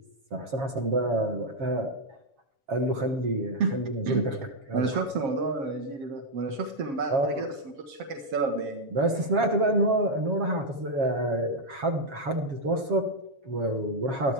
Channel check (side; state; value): left; late; 7.3 ms